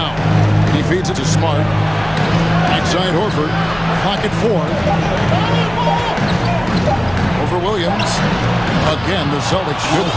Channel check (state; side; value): noise; left; hum, 18 dB below the sound